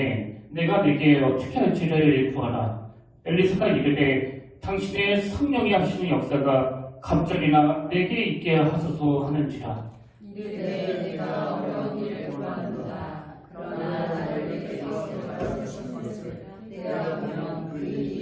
내가 내게 어떻게 할지를 구하라. 엘리사가 이르되 당신의 성령이 하시는 역사가 갑절이나 내게 있게 하소서 하는지라. 이르되 내가 어려운 일을 구하는도다. 그러나 나를 내게서 데려갈 수 있는 것을 내가 보면 그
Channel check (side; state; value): both; identical; correlation 1.00